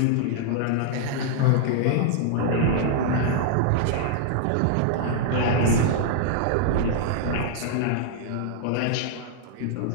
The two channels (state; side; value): different; both; correlation -0.01